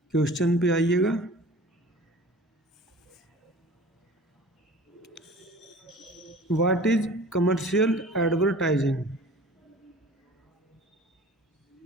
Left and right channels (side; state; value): both; normal; correlation 0.43